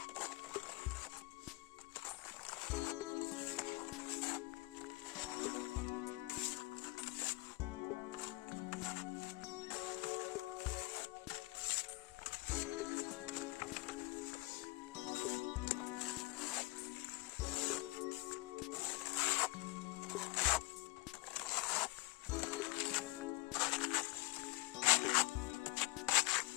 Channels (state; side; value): quieter; right; 22.0 dB